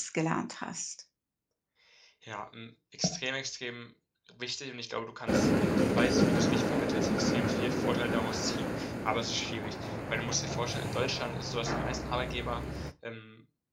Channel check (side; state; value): both; identical; correlation 1.00